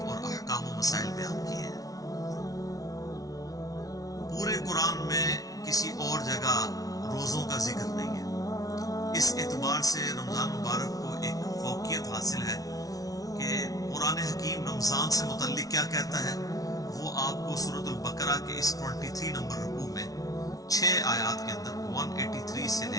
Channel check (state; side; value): late; right; 0.18 ms